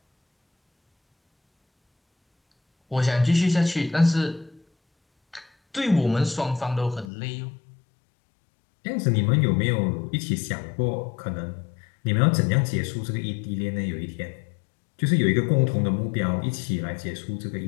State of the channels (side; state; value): right; drops out; at 7.1 s